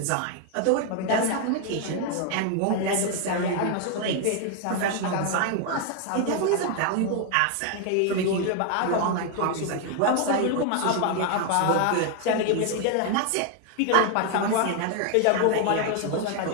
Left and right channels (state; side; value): different; both; correlation 0.00